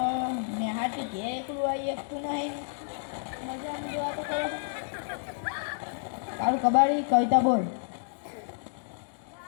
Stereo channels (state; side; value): silent; right; digital silence